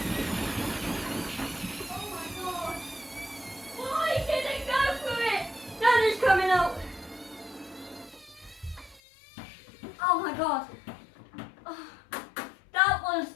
Oh my god. Why did it go through it? That is coming out. Oh my god. Oh, that was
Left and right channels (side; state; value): right; drops out; at 9.0 s